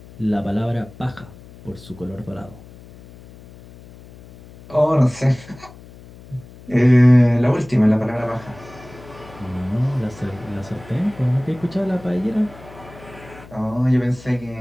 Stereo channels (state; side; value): noise; left; hum, 20 dB below the sound